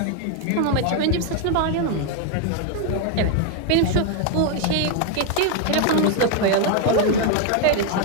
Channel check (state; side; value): different; both; correlation 0.01